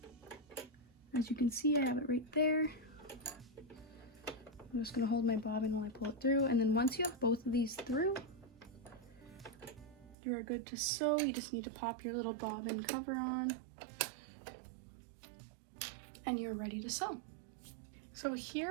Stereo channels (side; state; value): left; drops out; at 10.2 s